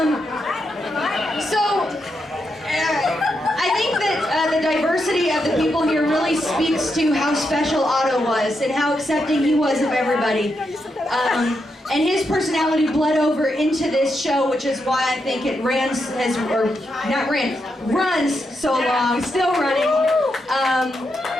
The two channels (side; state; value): both; normal; correlation 0.83